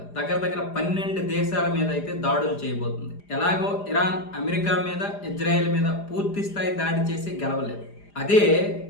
దగ్గర 12 దేశాల మీద అయితే దాడులు చేయబోతుంది. ఎలాగో ఇరాన్ అమెరికా మీద, ఇజ్రాయెల్ మీద పూర్తి స్థాయి దాడి చేసి గెలవలేదు. అదే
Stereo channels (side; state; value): right; late; 4.9 ms